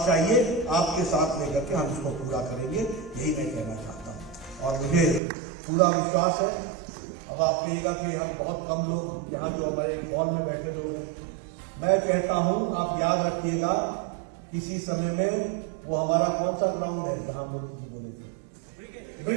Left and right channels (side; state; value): left; drops out; at 5.2 s